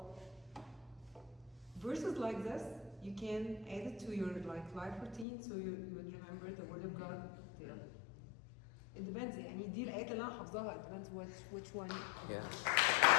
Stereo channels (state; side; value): drops out; right; at 5.2 s